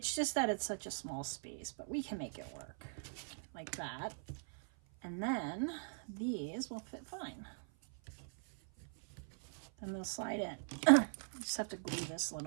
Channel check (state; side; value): silent; left; 51 dB below the other